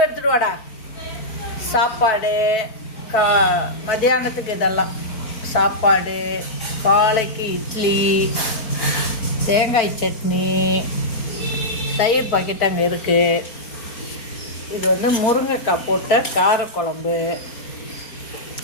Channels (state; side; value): late; right; 4.4 ms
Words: எடுத்துட்டு வாடா. சாப்பாடு மதியானத்துக்கு இதெல்லாம் சாப்பாடு, காலைக்கு இட்லி, தேங்காய் சட்னி, தயிர் பாக்கெட் அங்கே இருக்குது. இது முருங்கைக்காய் போட்ட காரக்குழம்பு.